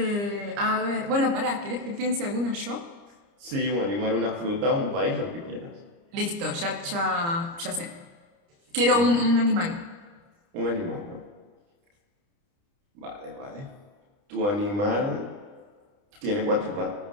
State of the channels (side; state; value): left; late; 29 ms